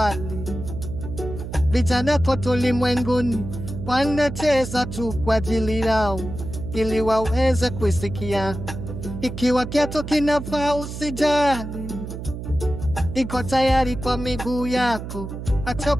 vijana kote ulimwenguni wanacheza tu kwa ajili yao, ili waweze kusikia. Ikiwa kiatu kinafaa usijali, iko tayari kwa miguu yako,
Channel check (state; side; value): noise; right; hum, 8 dB below the sound